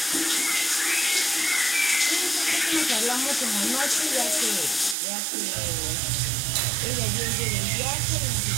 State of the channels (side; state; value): left; drops out; at 5.0 s